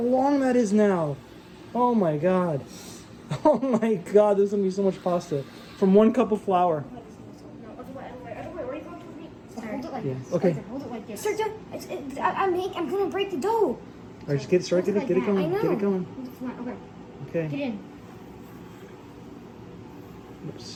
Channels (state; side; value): identical; both; correlation 1.00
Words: that is now. Oh my god. Oh my god, there's gonna be so much pasta from 1 cup of flour. Yeah. Okay. Hold it like this. Sir, I'm gonna break the dough. All right, just get it started. Get it going. Get it going. Okay. Okay. Get in.